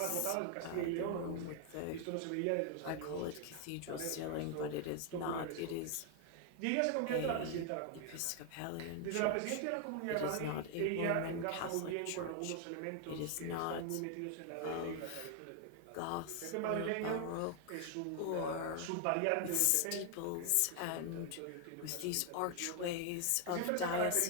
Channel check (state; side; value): different; both; correlation 0.00